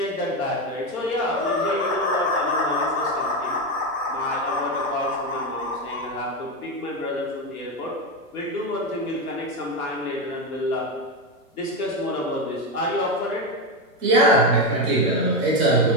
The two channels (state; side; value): normal; both; correlation 0.12